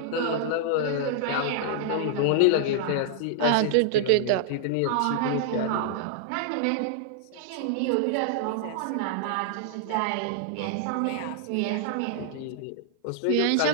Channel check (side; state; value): both; different; correlation -0.01